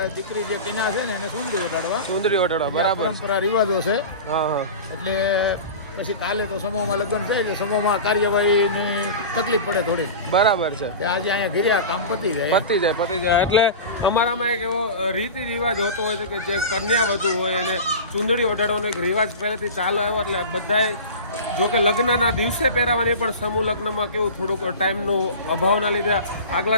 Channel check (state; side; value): inverted; both; correlation -0.32